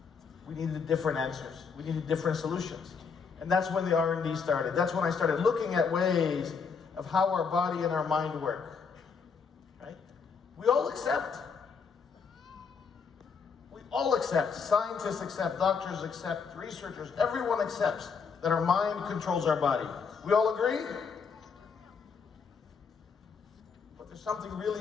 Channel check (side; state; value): right; quieter; 5.7 dB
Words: we needed different answers. We needed different solutions. And that's when the R&D started. That's when I started looking at ways of how our body and our mind work. Right? We all accept. We all accept. Scientists accept. Doctors accept. Researchers. Everyone accepts that our mind controls our body. We all agree? But there's something